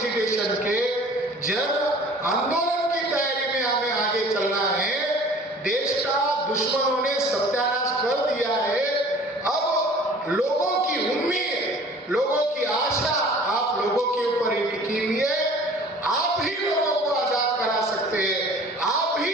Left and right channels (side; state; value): both; normal; correlation 0.48